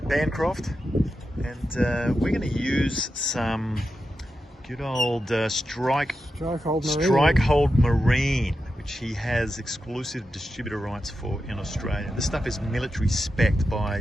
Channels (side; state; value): both; normal; correlation 0.89